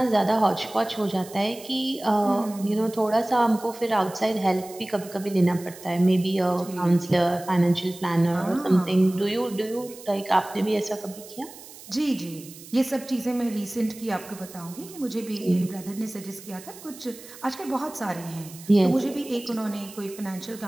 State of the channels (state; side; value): noise; right; hiss, 17 dB below the sound